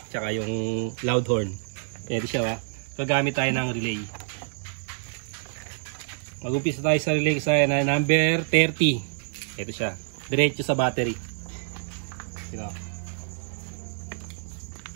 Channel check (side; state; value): left; silent; digital silence